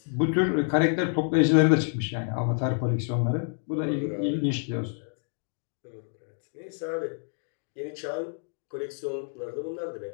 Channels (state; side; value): silent; right; 59 dB below the other